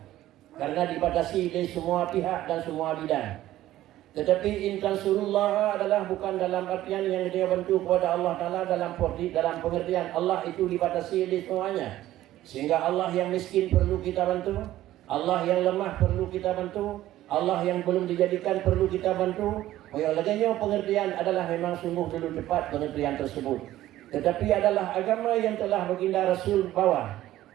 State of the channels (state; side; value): quieter; left; 14.4 dB